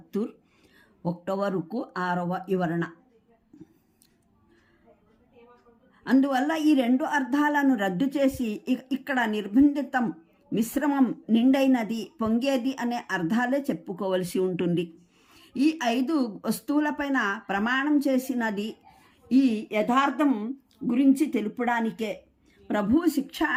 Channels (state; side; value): identical; both; correlation 1.00